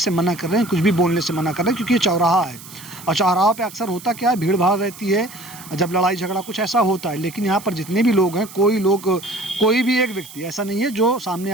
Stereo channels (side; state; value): right; noise; hiss, 17 dB below the sound